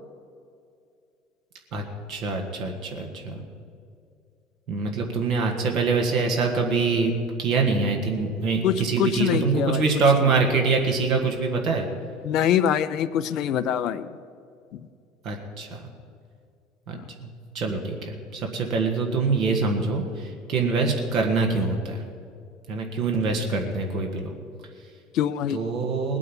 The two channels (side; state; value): both; normal; correlation 0.30